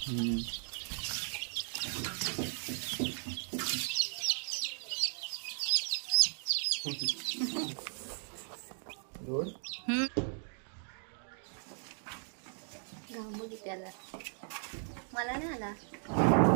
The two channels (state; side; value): silent; left; 53 dB below the other